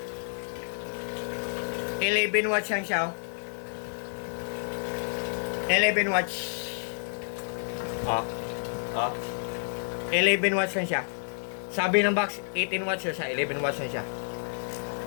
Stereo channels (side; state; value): right; silent; 55 dB below the other